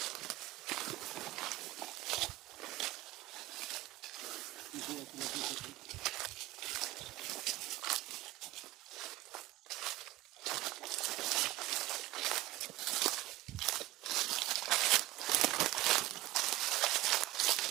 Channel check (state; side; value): quieter; left; 17.5 dB